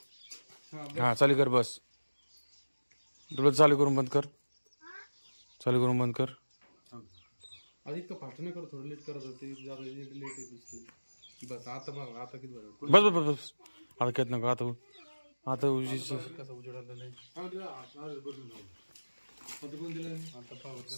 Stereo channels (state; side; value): inverted; both; correlation -1.00